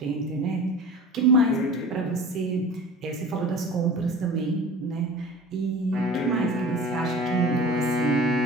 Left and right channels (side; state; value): both; normal; correlation 0.39